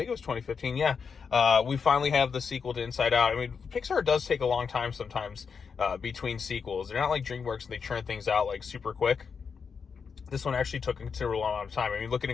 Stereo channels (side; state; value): right; quieter; 5.9 dB